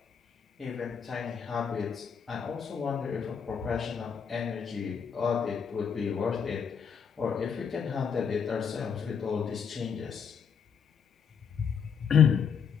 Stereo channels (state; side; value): quieter; right; 6.8 dB